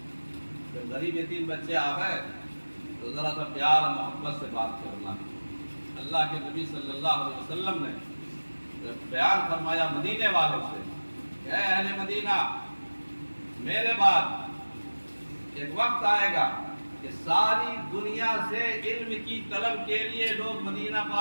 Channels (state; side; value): inverted; both; correlation -1.00